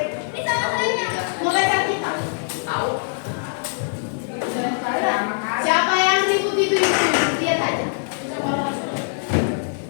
Mau baca kita? Tahu. Siapa yang ribut itu? Lihat aja.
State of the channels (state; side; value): silent; right; digital silence